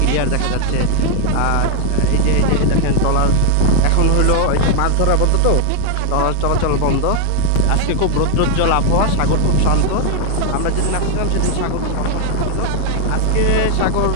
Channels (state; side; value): different; both; correlation 0.00